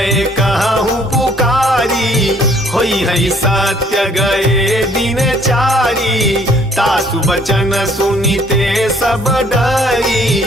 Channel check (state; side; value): normal; both; correlation 0.61